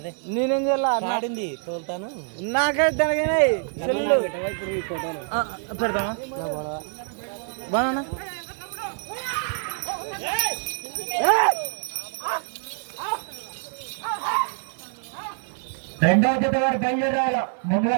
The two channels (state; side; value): silent; left; 56 dB below the other